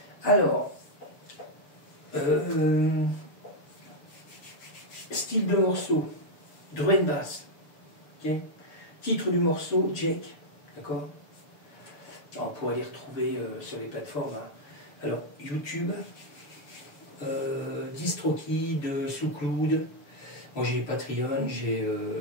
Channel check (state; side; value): late; right; 6.9 ms